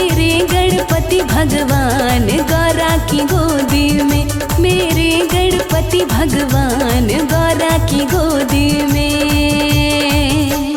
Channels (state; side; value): identical; both; correlation 1.00